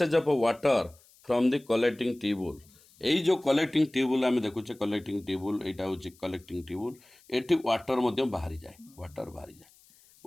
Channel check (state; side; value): noise; left; hiss, 28 dB below the sound